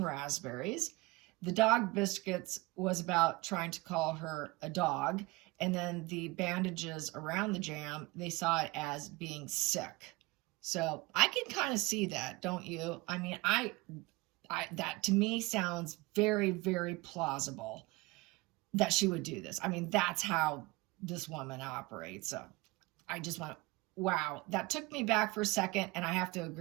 raspberries. The dog biscuits was about trying to call her a dog. And then the bandages around the jam, they saw it as being sick. So I can kind of see that, don't you? I mean, that to me sounds very, very plausible that she would do this. I mean, that's how this woman operates. So I just went, wow, that took me back for a second, and I have to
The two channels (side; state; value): left; quieter; 22.9 dB